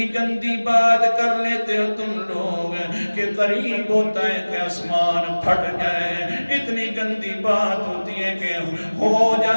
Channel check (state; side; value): inverted; both; correlation -1.00